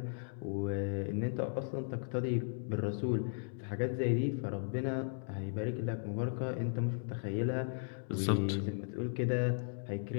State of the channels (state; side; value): silent; right; digital silence